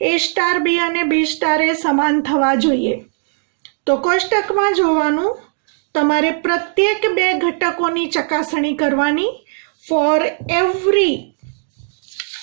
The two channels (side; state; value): left; silent; 68 dB below the other